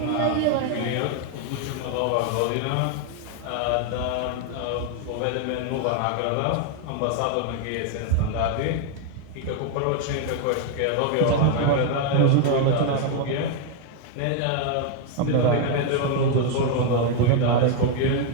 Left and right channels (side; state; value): both; different; correlation 0.01